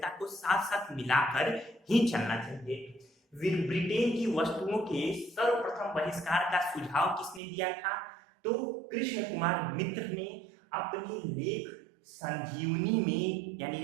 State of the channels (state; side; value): drops out; left; at 7.4 s